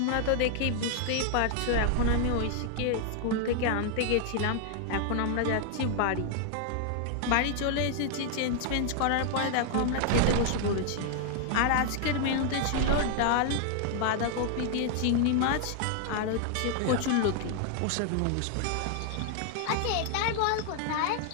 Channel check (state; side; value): different; both; correlation 0.00